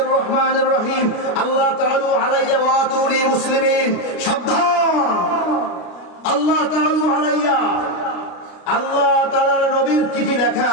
রহমানির রহিম। আল্লাহ তাআলা আলাইয়া ওয়া আতুনি মুসলিমিন। সাবধান, আল্লাহ তাআলা আলাইয়া, আল্লাহ তাআলার নবীর চিঠি লেখা,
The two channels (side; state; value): right; late; 33 ms